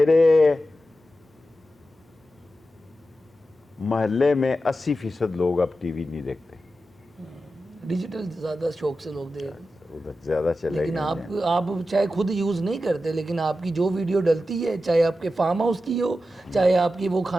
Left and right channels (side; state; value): both; normal; correlation 0.92